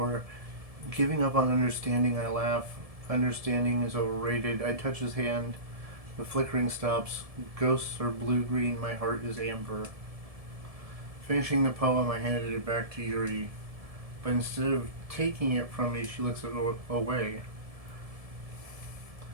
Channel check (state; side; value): late; left; 1.7 ms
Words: Giving up on understanding, I laugh. Understanding is overrated. I touch his hand. The flickering stops. Ghosts are blue-green. My heart is amber. Finishing the poem, I handed it back to Yuri. But instead of taking it from me, she looks away.